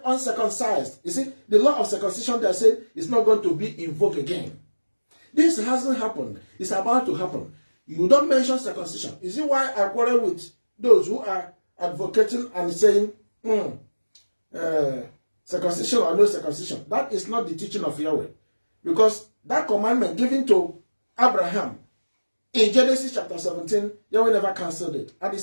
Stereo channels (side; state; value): both; inverted; correlation -1.00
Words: uncircumcised. You see, the law of circumcision, they said, is not going to be invoked again. This hasn't happened. It's about to happen. You don't mention circumcision. You see why I quarrel with those who are advocating and saying, circumcision or no circumcision. That is not the teaching of Yahweh. Because that commandment given to Abraham in Genesis chapter 17, Yahweh never cancelled it. And he